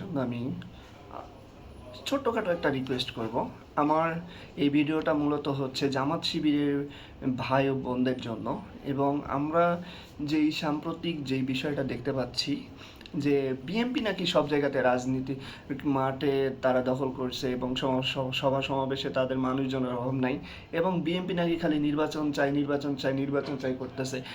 আমি ছোট্টখাটো একটা রিকোয়েস্ট করব। আমার এই ভিডিওটা মূলত হচ্ছে জামাত শিবিরের ভাই ও বোনদের জন্য। এবং আমরা যেই সাম্প্রতিক যেই বিষয়টা দেখতে পাচ্ছি যে বিএনপি নাকি সব জায়গাতে রাজনীতি মাঠে তারা দখল করছে এবং সভা সমাবেশে তাদের মানুষজনের অভাব নাই, এবং বিএনপি নাকি খালি নির্বাচন চাই নির্বাচন চাই নির্বাচন চাই করতেছে।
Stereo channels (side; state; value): both; identical; correlation 1.00